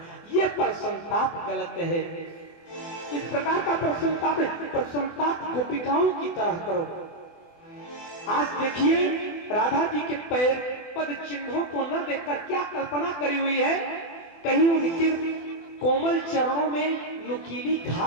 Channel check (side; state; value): right; late; 24 ms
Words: ये प्रसन्नताप गलत है। इस प्रकार का प्रसन्नताप गोपिकाओं की तरह करो। आज देखिए राधा जी के पैर पद चिन्हों को न देखकर क्या कल्पना करी हुई है, कहीं उनके कोमल चरणों में नुकीली